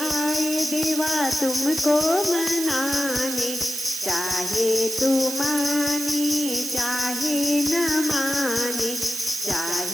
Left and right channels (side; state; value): right; noise; hiss, 6 dB below the sound